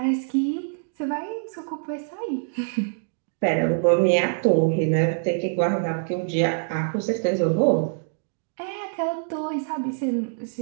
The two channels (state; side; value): silent; left; digital silence